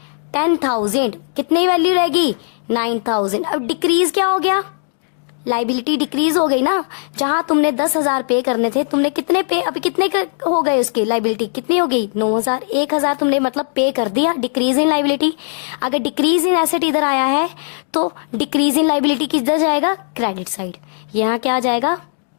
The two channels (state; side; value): silent; right; digital silence